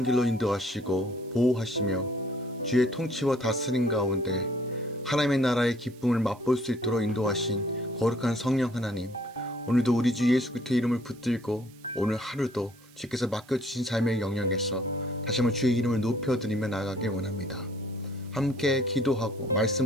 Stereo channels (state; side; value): noise; right; hiss, 26 dB below the sound